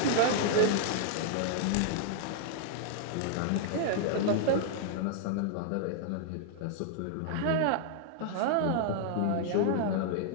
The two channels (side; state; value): both; different; correlation -0.01